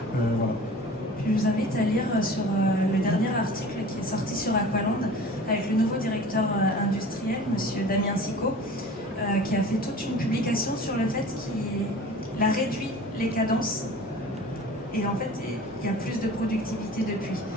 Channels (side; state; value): both; normal; correlation 0.41